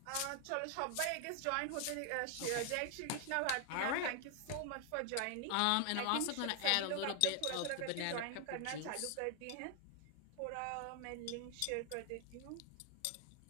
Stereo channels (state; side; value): different; both; correlation 0.00